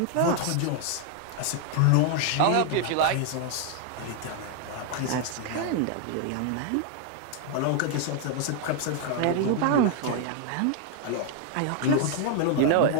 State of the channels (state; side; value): different; both; correlation 0.00